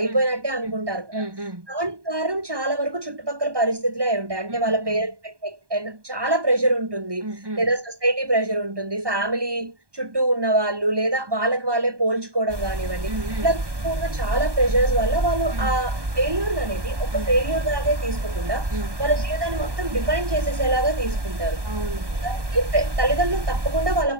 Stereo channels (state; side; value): late; left; 1.2 ms